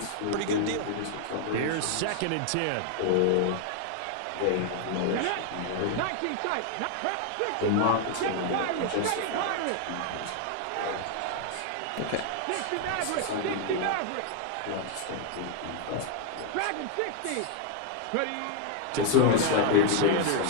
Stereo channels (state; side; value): different; both; correlation 0.00